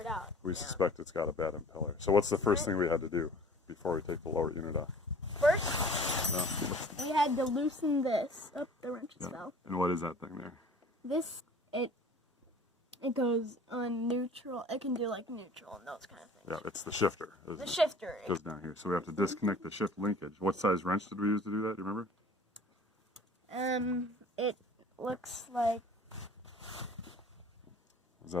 out. we suspect it's got a bad impeller. So what's the first thing we had to do before we take the lower unit off? First, we had to loosen this. Oh, the wrenches fell. And what is that thing there? This, it goes on neutral. It can do like neutral and those kind of things. Yeah, it's the shifter. The shifter. It goes down here. So we have to disconnect the shift linkage. What size wrench did we use to do that? Do you remember? It looks like. Is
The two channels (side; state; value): both; normal; correlation 0.46